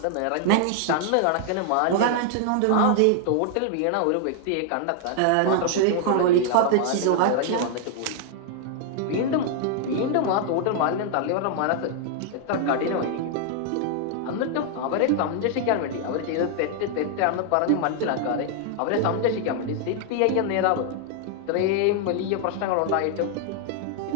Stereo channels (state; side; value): different; both; correlation 0.00